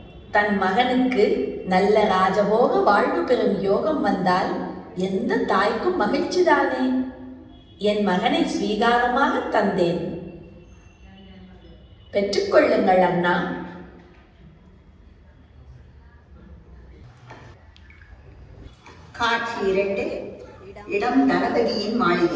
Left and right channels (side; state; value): both; identical; correlation 1.00